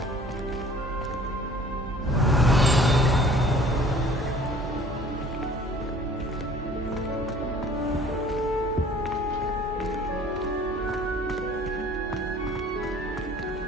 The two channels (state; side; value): normal; both; correlation 0.51